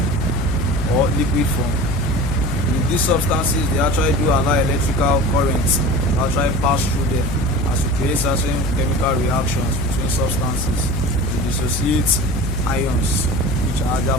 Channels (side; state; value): left; noise; hum, 3 dB below the sound